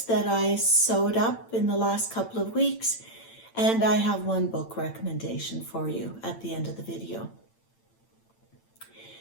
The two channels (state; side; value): late; right; 8.9 ms